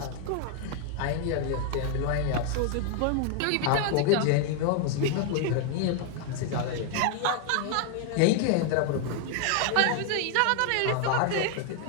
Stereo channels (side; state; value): both; different; correlation 0.00